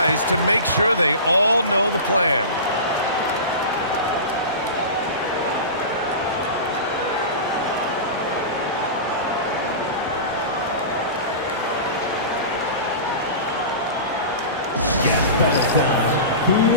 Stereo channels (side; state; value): both; inverted; correlation -0.30